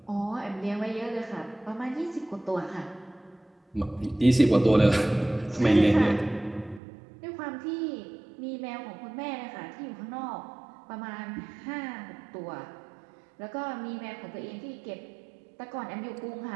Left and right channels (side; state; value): left; drops out; at 6.8 s